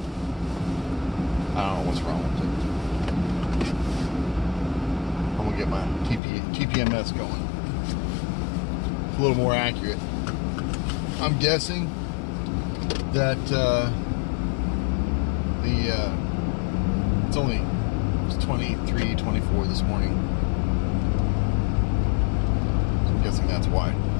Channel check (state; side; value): drops out; right; at 6.2 s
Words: I don't know what's wrong with it. I'm gonna get my TPMS going. It's a little more accurate. I'm guessing that it's 23, 24 this morning. So I'm guessing that's why.